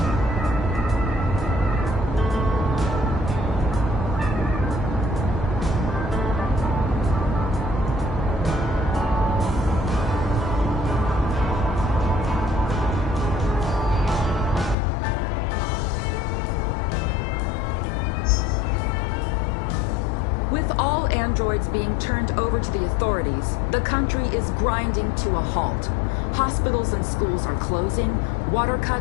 With all androids being turned over to the authorities, the country is grinding to a halt. Hospitals and schools are closing, water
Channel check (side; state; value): right; drops out; at 14.8 s